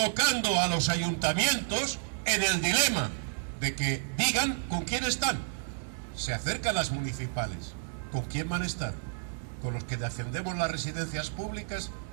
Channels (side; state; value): left; silent; 57 dB below the other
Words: a los ayuntamientos en el dilema de que digan con quién están. Se acercan las municipales, ¿con quién van a estar? ¿Con los que defendemos las residencias públicas,